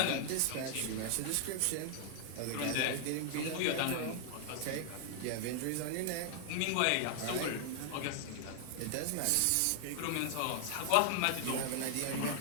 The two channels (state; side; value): different; both; correlation 0.00